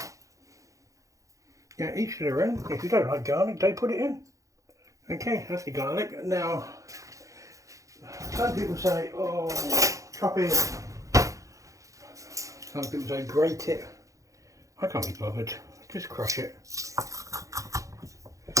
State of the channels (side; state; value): left; late; 0.16 ms